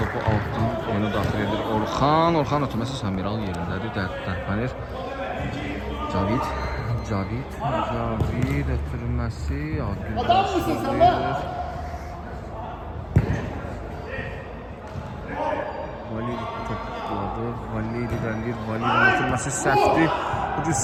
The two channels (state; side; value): identical; both; correlation 1.00